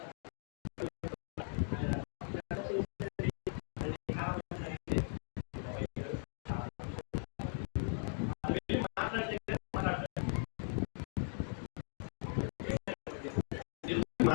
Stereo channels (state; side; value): silent; right; 52 dB below the other